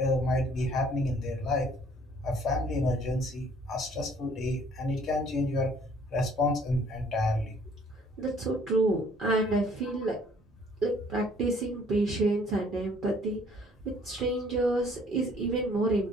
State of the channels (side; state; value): both; normal; correlation 0.58